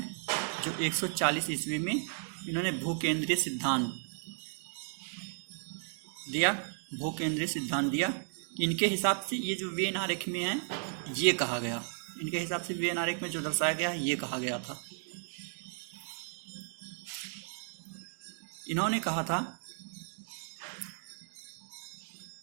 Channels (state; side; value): silent; left; digital silence